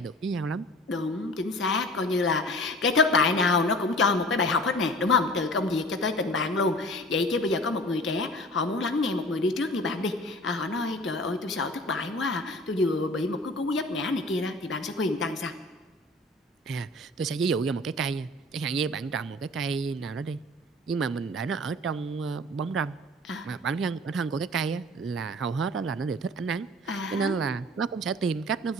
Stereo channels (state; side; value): normal; both; correlation 0.44